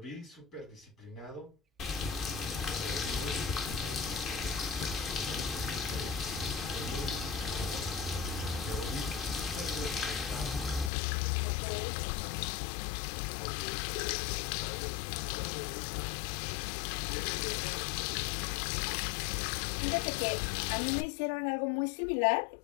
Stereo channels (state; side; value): drops out; right; at 10.9 s